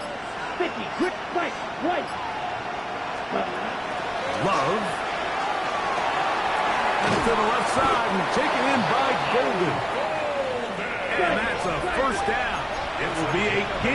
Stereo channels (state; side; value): identical; both; correlation 1.00